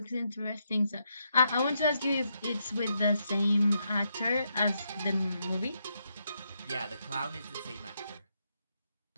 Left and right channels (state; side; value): inverted; both; correlation -0.80